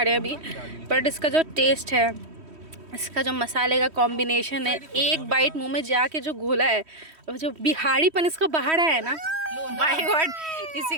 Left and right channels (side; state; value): left; late; 3.1 ms